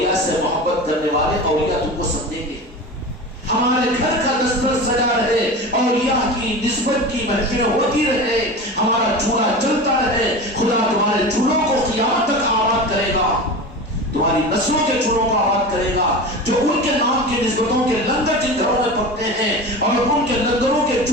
سے محبت کرنے والے اولیاء تم کو سمجھیں گے. ہمارے گھر کا دستر سجا رہے، اولیاء کی نسبت کی محفلیں ہوتی رہے، ہمارا چولہا چلتا رہے. خدا تمہارے چولہوں کو قیامت تک آباد کرے گا، تمہاری نسلوں کے چولہوں کو آباد کرے گا. جو ان کے نام کی نسبتوں کے لنگر جن گھروں میں پکتے ہیں اور ان کے لنگروں کے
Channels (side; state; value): both; normal; correlation 0.29